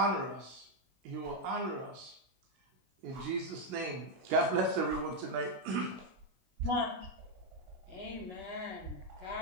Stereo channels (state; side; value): late; left; 16 ms